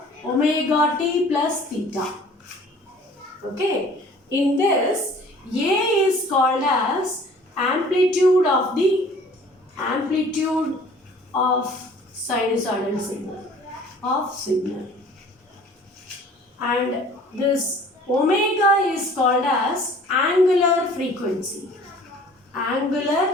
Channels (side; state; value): both; normal; correlation 0.50